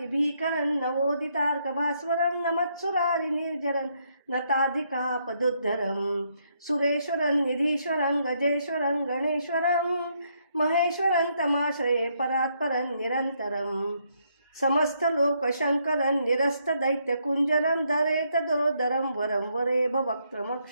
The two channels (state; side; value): inverted; both; correlation -0.74